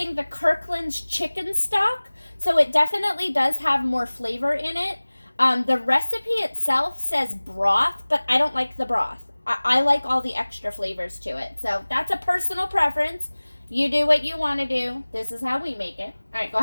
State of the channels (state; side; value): inverted; both; correlation -1.00